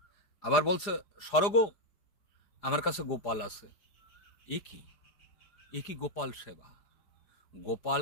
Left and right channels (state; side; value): late; right; 5.0 ms